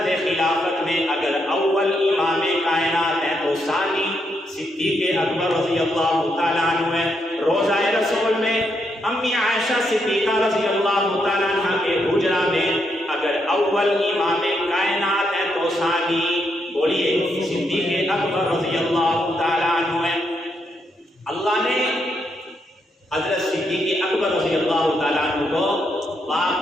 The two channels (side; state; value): both; normal; correlation 0.79